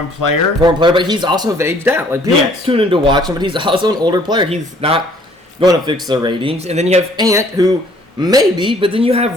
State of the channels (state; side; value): normal; both; correlation 0.59